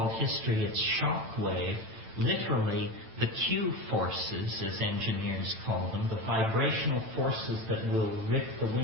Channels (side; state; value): left; late; 9.0 ms